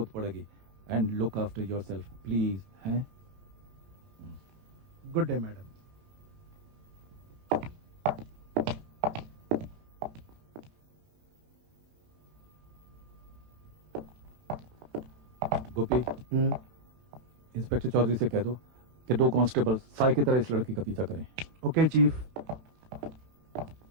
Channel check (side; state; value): left; late; 18 ms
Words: पड़ेगी। And look after yourself please, हैं? Good day madam. Inspector Chaudhary से कह दो कि 2 कांस्टेबल साई की तरह इस लड़की का पीछा करें। Okay chief.